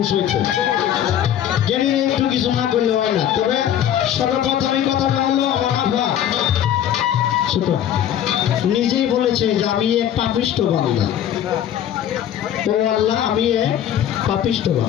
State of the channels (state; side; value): quieter; right; 10.5 dB